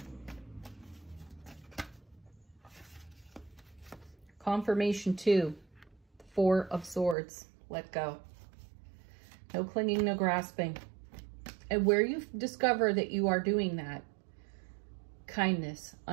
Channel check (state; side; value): drops out; left; at 7.2 s